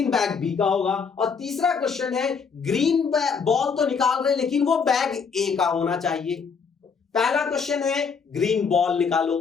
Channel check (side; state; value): right; quieter; 5.7 dB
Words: बैग बी का होगा। और तीसरा क्वेश्चन है ग्रीन बॉल तो निकाल रहे हैं लेकिन वो बैग ए का होना चाहिए। पहला क्वेश्चन है ग्रीन बॉल निकालो,